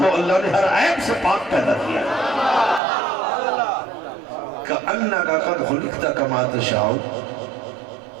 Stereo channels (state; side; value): drops out; left; at 2.8 s